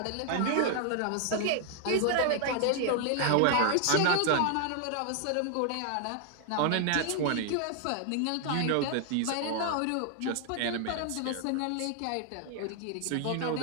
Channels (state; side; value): different; both; correlation 0.00